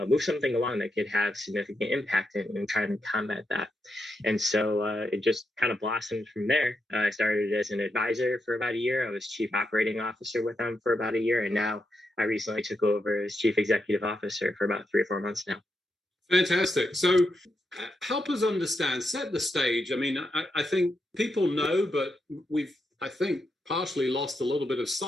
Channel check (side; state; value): both; normal; correlation 0.84